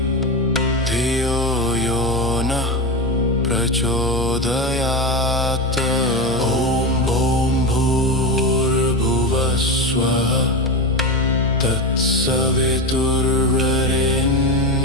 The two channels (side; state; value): both; normal; correlation 0.19